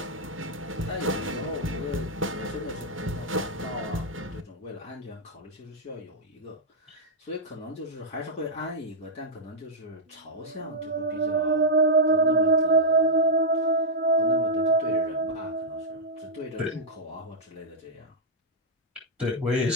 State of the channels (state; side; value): normal; both; correlation -0.06